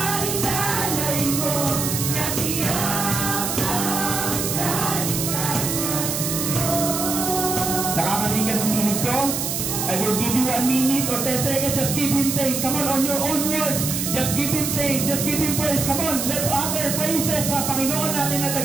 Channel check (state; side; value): noise; right; hiss, 2 dB below the sound